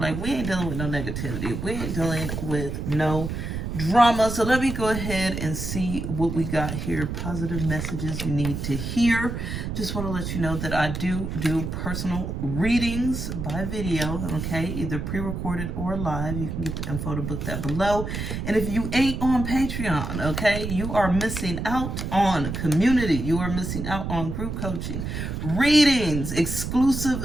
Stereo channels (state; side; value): noise; right; rumble, 4 dB below the sound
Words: Like, we ain't dealing with no negativity. We ain't dealing with no drama. So let me go ahead and see what we got here. Positive messages you need to hear. Just want to let you know that I do personal readings by video, okay? Either pre-recorded or live. You can get the info to book that below. And if you ain't on Patreon, okay, you are missing out on community. You are missing out on group coaching, readings, exclusive